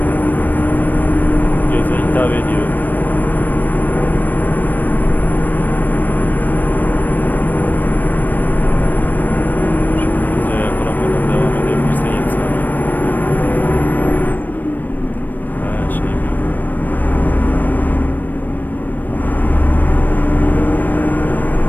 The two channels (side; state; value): right; late; 0.088 ms